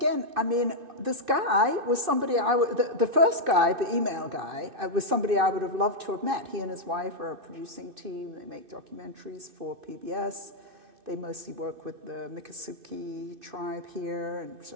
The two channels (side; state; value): left; late; 2.6 ms